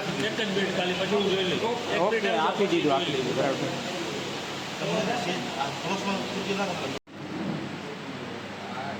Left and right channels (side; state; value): both; identical; correlation 1.00